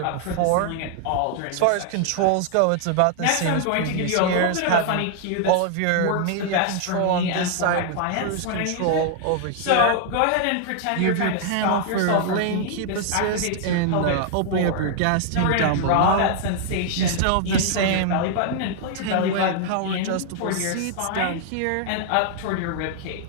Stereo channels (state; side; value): different; both; correlation 0.00